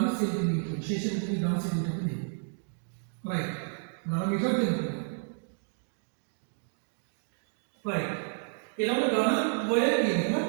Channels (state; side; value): silent; left; 57 dB below the other